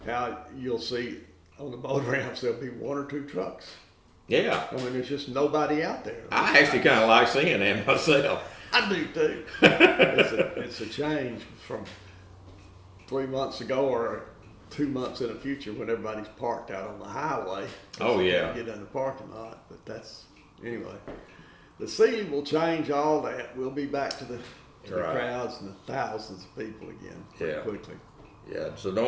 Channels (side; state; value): both; identical; correlation 1.00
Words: how you'll see on the boat ramps there'll be one or two trucks. Yeah. I mean, there's just nobody out there. I actually kind of like seeing that myself. I do too. It's a change from 3 months ago or 2 months in the future when everybody's parked out on the highway. Oh yeah. Get in the parking lot, but anyway. The sea will change all that. We'll be back to the crowds and the thousands of people again pretty quickly. Yeah. So